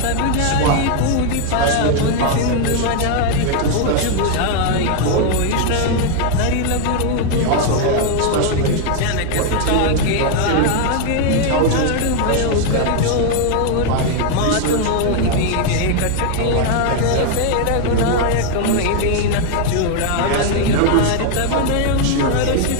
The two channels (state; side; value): different; both; correlation 0.00